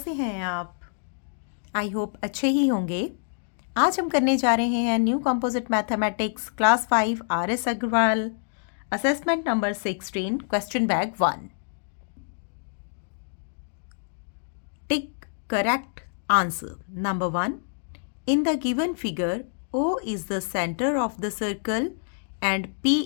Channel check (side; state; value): right; silent; digital silence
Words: हैं आप? आई होप अच्छे ही होंगे। आज हम करने जा रहे हैं new composite mathematics class 5 RS Agarwal assessment number 16 question bag 1। Tick correct answer. Number 1, in the given figure O is the center of the circle and P